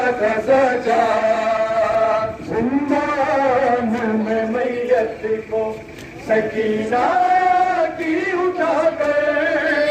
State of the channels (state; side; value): identical; both; correlation 1.00